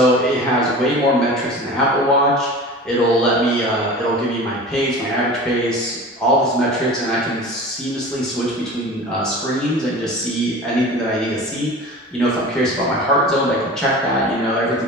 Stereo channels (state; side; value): normal; both; correlation 0.36